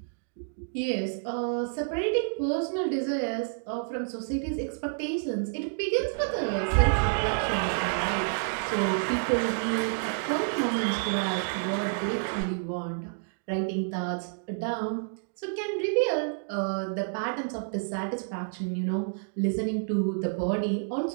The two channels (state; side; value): silent; left; digital silence